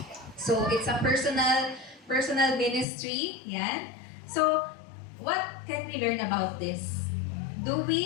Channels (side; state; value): right; drops out; at 2.9 s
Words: So, it's a personal ministry, yan. So, what can we learn about this? Do